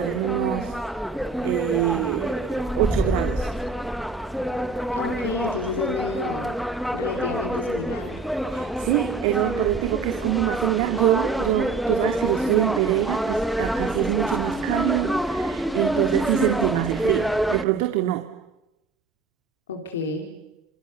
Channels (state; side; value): quieter; left; 4.6 dB